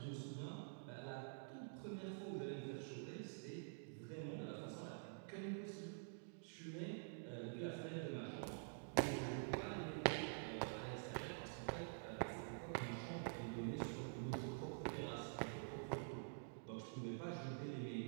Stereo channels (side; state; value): left; silent; digital silence